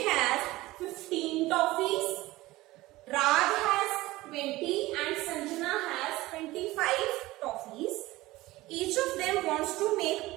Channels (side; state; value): left; quieter; 18.6 dB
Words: has 15 toffees, Raj has 20 and Sanjana has 25 toffees. Each of them wants to make